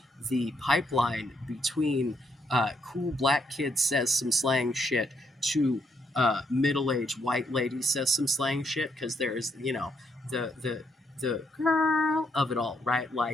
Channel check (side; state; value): both; normal; correlation 0.75